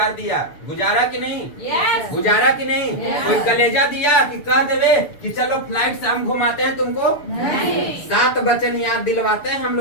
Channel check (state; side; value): late; right; 6.9 ms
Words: दिया, गुजारा कि नहीं? गुजारा कि नहीं? कोई कलेजा दिया कि कह देवे कि चलो फ्लाइट से हम घुमाते हैं तुमको? 7 वचन याद दिलवाते हैं हम